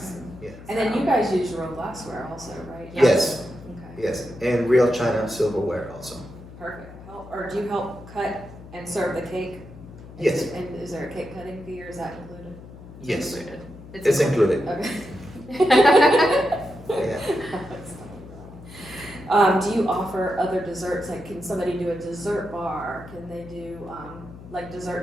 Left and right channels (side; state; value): left; noise; hum, 17 dB below the sound